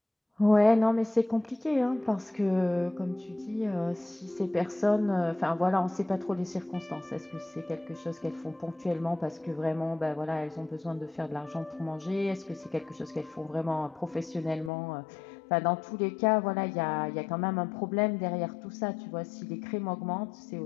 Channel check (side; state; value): right; drops out; at 14.7 s